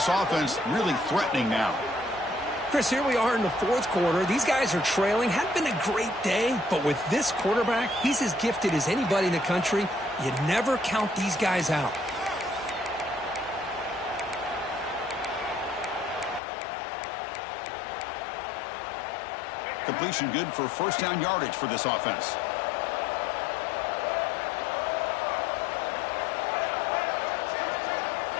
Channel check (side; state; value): right; drops out; at 16.4 s